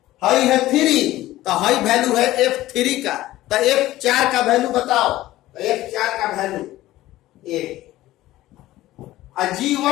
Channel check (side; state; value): right; quieter; 15.9 dB